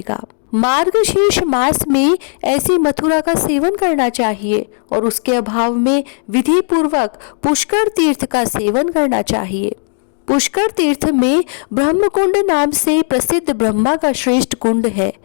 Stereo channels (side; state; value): right; silent; digital silence